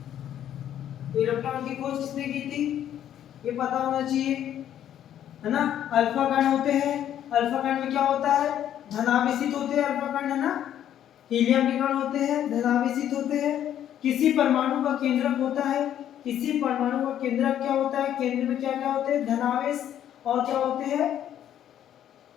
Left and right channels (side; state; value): right; quieter; 10.7 dB